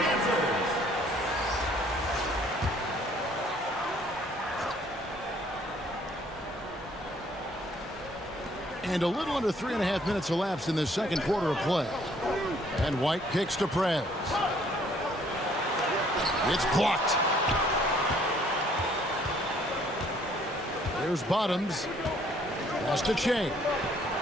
And a little under 3.5 minutes elapsed in the second quarter of play. And White kicks to Prez. It's blocked. There's Bottoms. Pass to Che.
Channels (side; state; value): both; normal; correlation 0.62